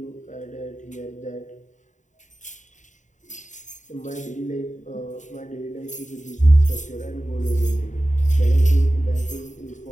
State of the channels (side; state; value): right; late; 0.36 ms